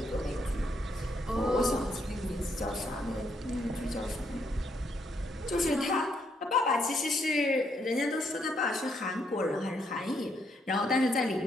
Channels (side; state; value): both; normal; correlation 0.74